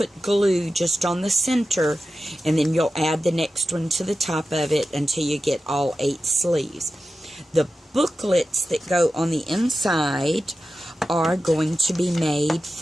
glue just on the center, and then you'll add the next one to the top of it until you get all 8 sleeves. The booklets that go on the inside are going to be made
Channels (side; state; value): both; normal; correlation 0.92